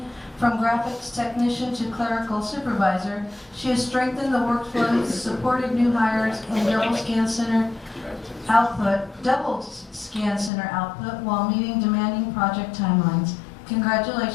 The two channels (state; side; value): drops out; right; at 10.5 s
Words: from graphics technician to clerical supervisor, she has strengthened the workflows, supported new hires, and double scan center output while meeting demanding project timelines.